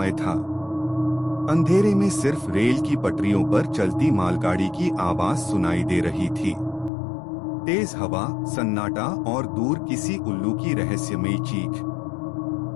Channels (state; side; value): drops out; right; at 6.9 s